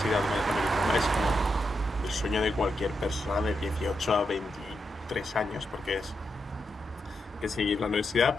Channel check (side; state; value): both; normal; correlation 0.85